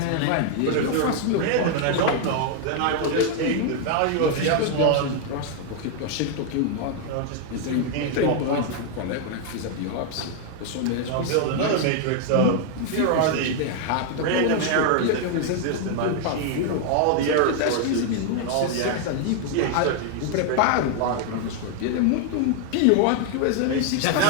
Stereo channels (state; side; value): different; both; correlation 0.00